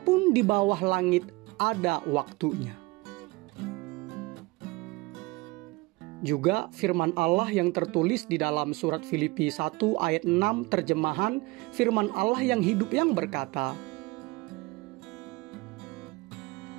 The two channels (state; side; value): quieter; left; 23.5 dB